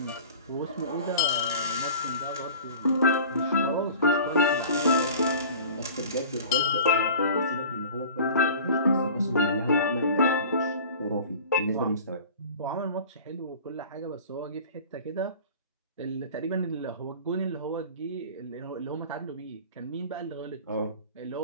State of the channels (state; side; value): inverted; both; correlation -0.41